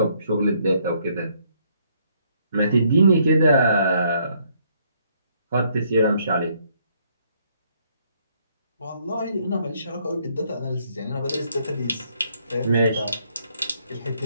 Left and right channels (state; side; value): inverted; both; correlation -0.69